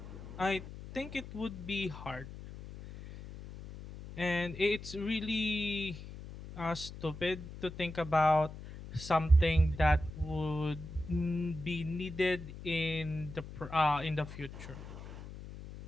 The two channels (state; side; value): noise; left; hum, 12 dB below the sound